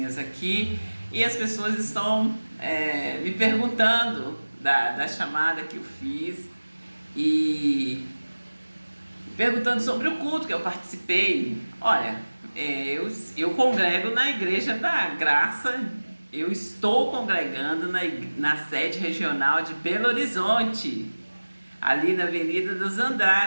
aqui. E as pessoas estão me perguntando da chamada que eu fiz e perguntando sobre o culto que eu participei. Olha, eu congrego na Igreja da Graça, eu estou congregando na sede regional de Belo Horizonte, ali na Avenida dos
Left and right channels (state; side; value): inverted; both; correlation -1.00